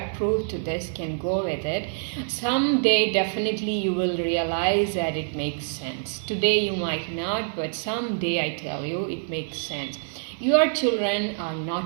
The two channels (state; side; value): silent; left; 60 dB below the other